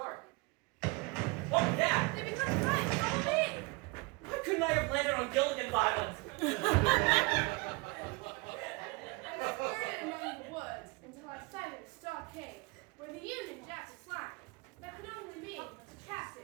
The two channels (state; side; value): quieter; left; 26.6 dB